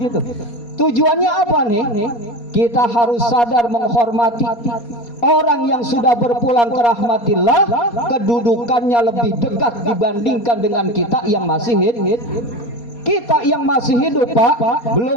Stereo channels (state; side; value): late; right; 4.2 ms